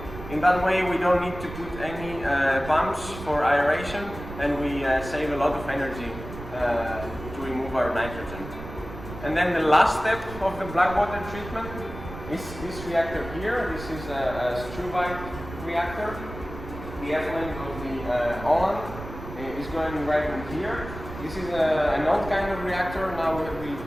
In that way we don't need to put any pumps for aeration, and we save a lot of energy to remove our nitrogen. And then the last step of the black water treatment is this reactor here. This is a Struvite reactor. The effluent of the Holland is going right in here. This is an old kind of reactor. Now we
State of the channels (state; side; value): noise; right; rumble, 12 dB below the sound